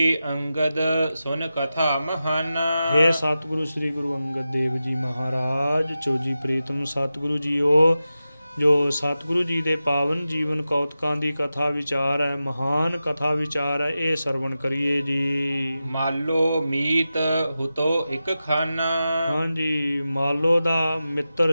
ਅੰਗਦ ਸੁਨ ਕਥਾ ਮਹਾਨਾ। ਹੇ ਸਤਿਗੁਰੂ ਸ੍ਰੀ ਗੁਰੂ ਅੰਗਦ ਦੇਵ ਜੀ ਮਹਾਰਾਜ, ਚੋਜੀ ਪ੍ਰੀਤਮ ਸਤਿਗੁਰੂ ਜੀਓ, ਜੋ ਸਤਿਗੁਰੂ ਜੀ ਦੇ ਪਾਵਨ ਜੀਵਨ ਕੌਤਕਾਂ ਦੀ ਕਥਾ ਵਿਚਾਰ ਹੈ, ਮਹਾਨ ਕਥਾ ਵਿਚਾਰ ਹੈ, ਇਹ ਸਰਵਣ ਕਰੀਏ ਜੀ। ਮਾਲੋ ਮੀਤ ਹੁਤੋ ਇੱਕ ਖਾਨਾ। ਹਾਂਜੀ, ਮਾਲੋ ਦਾ ਮਿੱਤਰ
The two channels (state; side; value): inverted; both; correlation -0.93